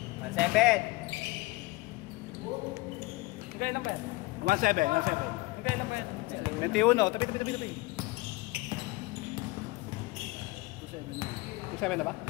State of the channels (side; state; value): right; quieter; 22.0 dB